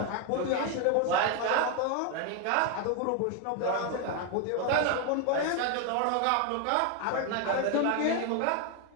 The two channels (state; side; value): different; both; correlation 0.01